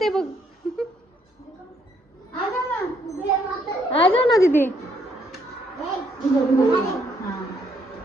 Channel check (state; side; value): normal; both; correlation 0.70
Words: बघ. आ जा ना दीदी.